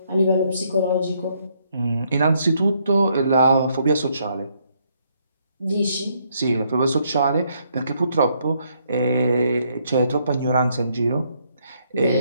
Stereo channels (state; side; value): inverted; both; correlation -0.72